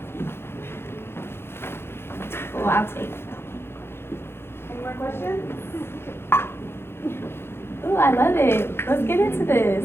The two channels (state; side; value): late; right; 0.11 ms